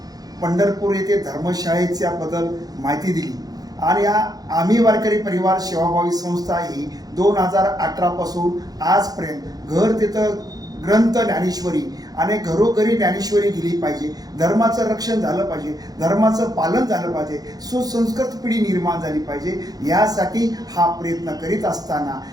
पंढरपूर येथे धर्मशाळेच्याबद्दल माहिती दिली आणि आम्ही वारकरी परिवार सेवाभावी संस्था ही 2018 पासून आजपर्यंत घर तिथं ग्रंथ ज्ञानेश्वरी आणि घरोघरी ज्ञानेश्वरी गेली पाहिजे, धर्माचं रक्षण झालं पाहिजे, धर्माचं पालन झालं पाहिजे, सुसंस्कृत पिढी निर्माण झाली पाहिजे, यासाठी हा प्रयत्न करीत असताना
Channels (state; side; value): late; left; 0.18 ms